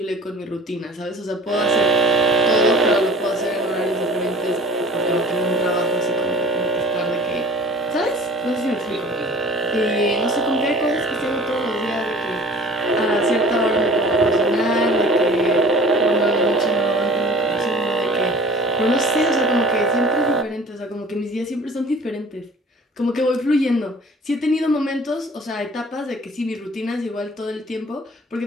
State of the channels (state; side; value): normal; both; correlation 0.46